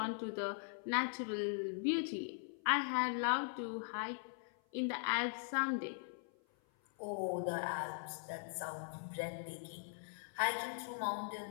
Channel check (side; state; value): right; silent; 51 dB below the other